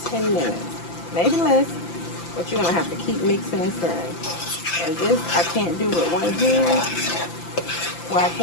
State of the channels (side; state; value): right; late; 5.9 ms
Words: 10 minutes, maybe less, but you're going to have to keep mixing and stirring. And this, I can't do with one hand. Well, I